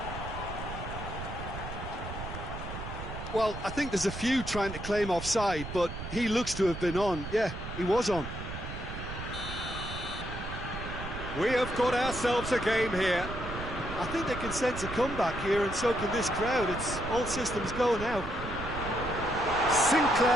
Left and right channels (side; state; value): right; noise; rumble, 8 dB below the sound